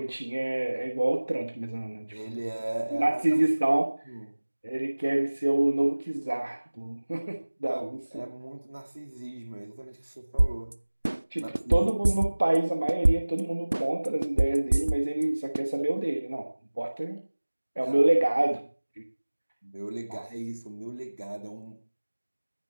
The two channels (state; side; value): inverted; both; correlation -1.00